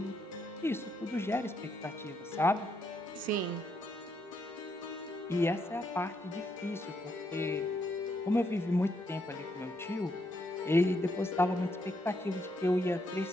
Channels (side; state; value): both; normal; correlation 0.77